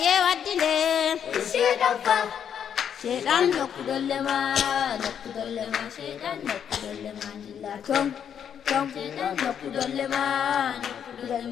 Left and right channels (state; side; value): quieter; right; 8.4 dB